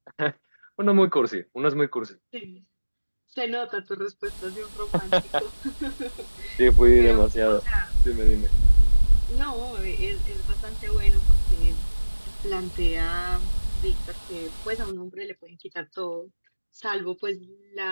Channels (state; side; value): inverted; both; correlation -1.00